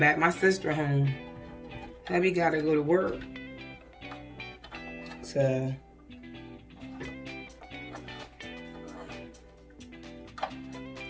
My sister home. Hubby got to go to work. So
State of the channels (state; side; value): identical; both; correlation 1.00